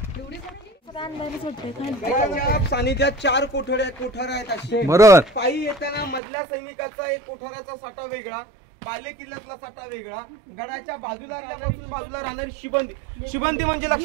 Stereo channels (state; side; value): drops out; left; at 6.2 s